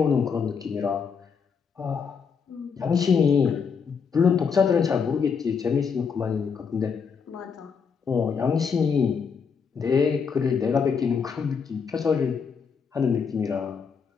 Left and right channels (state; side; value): quieter; right; 6.1 dB